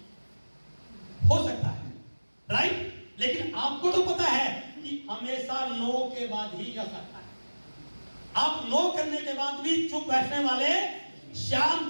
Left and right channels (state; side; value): inverted; both; correlation -1.00